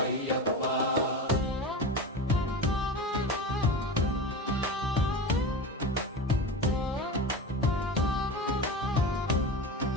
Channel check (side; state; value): both; normal; correlation 0.27